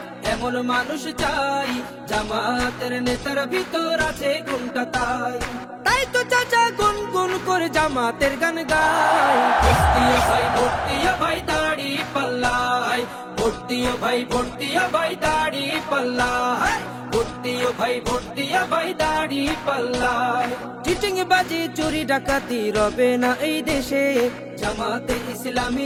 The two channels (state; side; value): identical; both; correlation 1.00